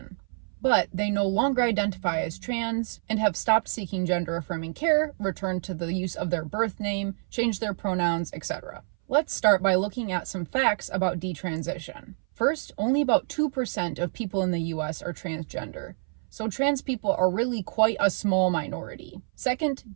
But they no longer identify as trans and have stopped seeking gender-affirming care, returned to the use of their birth name, changed their pronouns, etc. Let's start by looking at some facts about detransition. First, only about 2% of people in the US are transgender, so trans people are really quite a small minority. Second,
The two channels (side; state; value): left; silent; 59 dB below the other